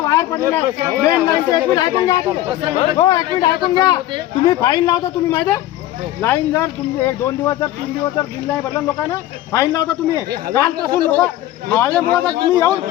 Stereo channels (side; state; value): right; quieter; 14.2 dB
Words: वायर पडलेला ऐकून घ्या. तुम्ही फाईन लावता, तुम्ही माहिती आहे लाईन जर तुम्ही 1-2 दिवस जर 3 दिवस जर बिल नाही भरलं लोकांना फाईन लावता. तुम्ही कालपासून लोक माझ्यामुळे तुम्ही येऊन